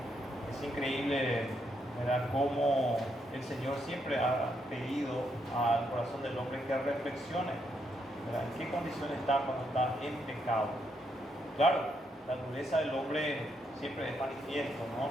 Es increíble, ¿verdad?, cómo el Señor siempre ha pedido al corazón del hombre que reflexione, ¿verdad?, en qué condición está cuando está en pecado. Claro, la dureza del hombre siempre es manifiesto, ¿no?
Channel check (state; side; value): normal; both; correlation 0.77